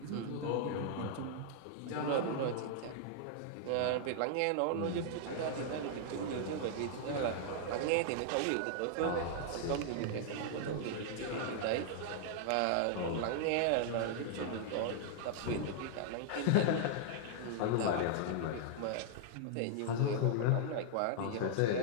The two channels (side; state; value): both; different; correlation -0.01